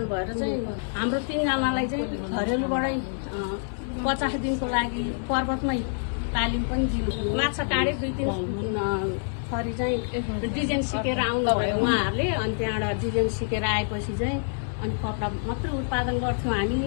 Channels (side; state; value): right; silent; 60 dB below the other